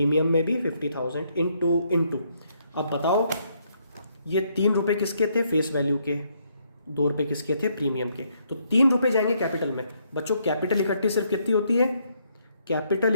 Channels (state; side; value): inverted; both; correlation -0.72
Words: में भी 50,000 इंटू। अब बताओ ये 3 रुपए किसके थे फेस वैल्यू के, 2 रुपये किसके थे? प्रीमियम के। तो 3 रुपये जाएंगे कैपिटल में। बच्चों कैपिटल इकट्ठी सिर्फ कितनी होती है? कैपिटल